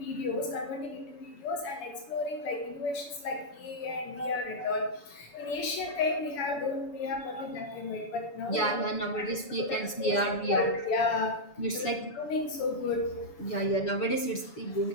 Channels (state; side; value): late; right; 7.0 ms